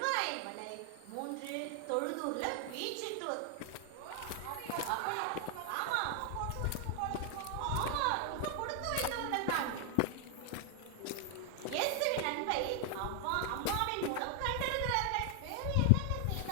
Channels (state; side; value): different; both; correlation 0.00